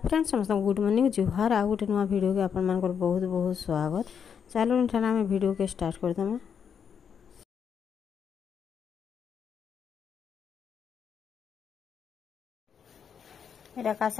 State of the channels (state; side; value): quieter; right; 7.3 dB